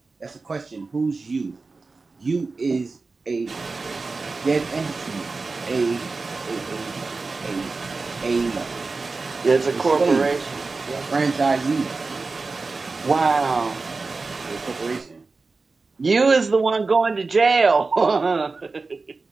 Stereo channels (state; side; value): quieter; left; 3.9 dB